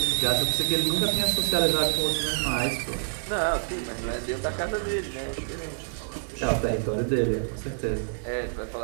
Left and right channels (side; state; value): left; silent; 60 dB below the other